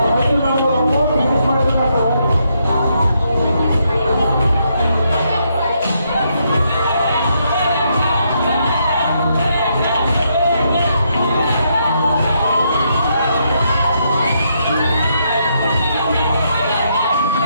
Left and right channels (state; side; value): inverted; both; correlation -0.77